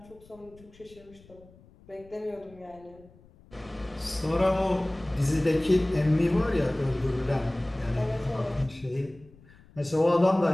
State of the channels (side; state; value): left; noise; rumble, 25 dB below the sound